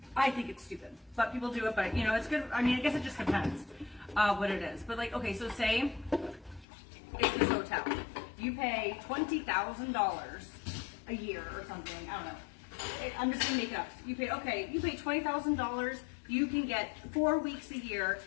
I think it's stupid, but people do it, but you know, it's good. I mean, I guess it just depends what it is. But like, okay, so say it's this hotel. You pay $20,000 a year or something. I don't know. I'm just gonna make it up. You pay $20,000. You can get 4 weeks a year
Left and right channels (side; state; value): right; drops out; at 6.7 s